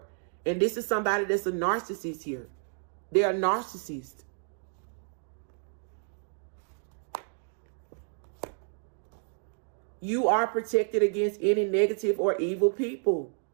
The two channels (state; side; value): silent; left; 57 dB below the other